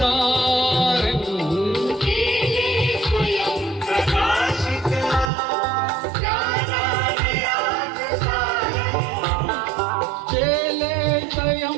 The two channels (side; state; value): left; drops out; at 5.3 s